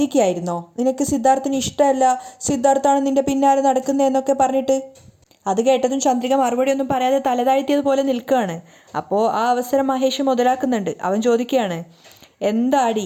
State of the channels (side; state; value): both; identical; correlation 1.00